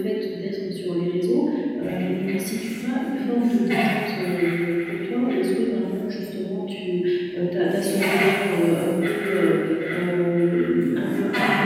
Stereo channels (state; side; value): identical; both; correlation 1.00